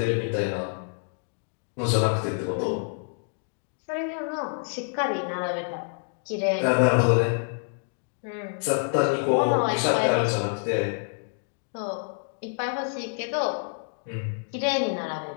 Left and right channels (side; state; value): right; silent; 60 dB below the other